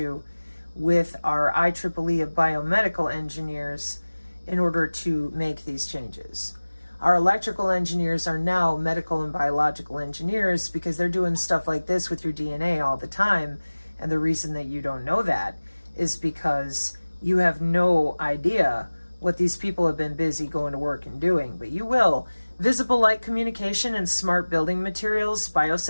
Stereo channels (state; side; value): inverted; both; correlation -1.00